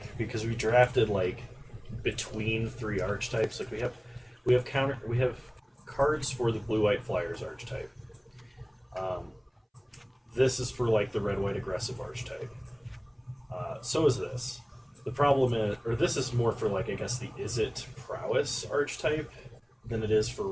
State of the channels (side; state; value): both; identical; correlation 1.00